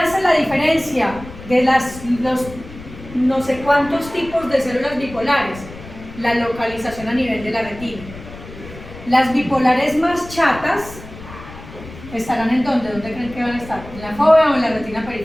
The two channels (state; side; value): noise; left; rumble, 15 dB below the sound